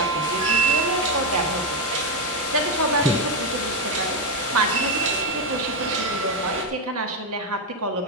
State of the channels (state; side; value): normal; both; correlation 0.06